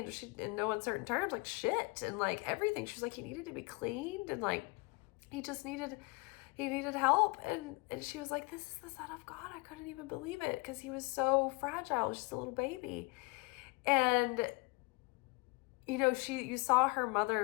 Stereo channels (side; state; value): right; quieter; 26.8 dB